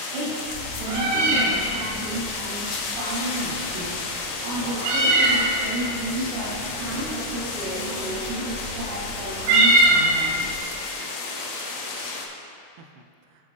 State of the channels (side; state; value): left; late; 29 ms